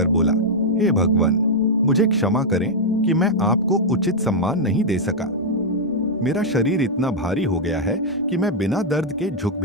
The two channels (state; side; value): normal; both; correlation -0.03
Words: बोला, हे भगवान, मुझे क्षमा करें कि मैं आपको उचित सम्मान नहीं दे सका। मेरा शरीर इतना भारी हो गया है कि मैं बिना दर्द के झुक